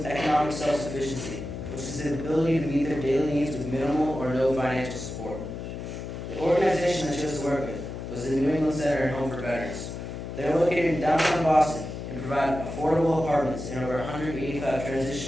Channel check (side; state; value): left; noise; hum, 8 dB below the sound